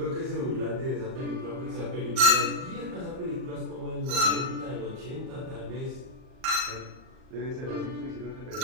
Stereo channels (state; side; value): late; left; 38 ms